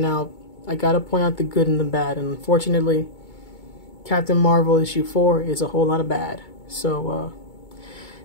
out the good and the bad. And unfortunately, Captain Marvel issue 4 is a whole lot of bad. So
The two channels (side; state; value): right; late; 2.2 ms